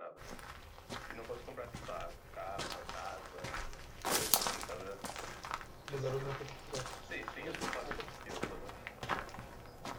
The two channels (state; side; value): identical; both; correlation 1.00